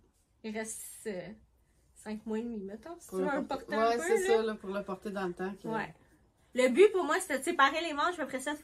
Il reste 5 mois et demi, mettons. Si tu veux le porter un peu, c'est là. ça, là, pour le porter dans le temps. Ouais. Le but pour moi, c'était de séparer les manches, après ça, de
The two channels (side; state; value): both; identical; correlation 1.00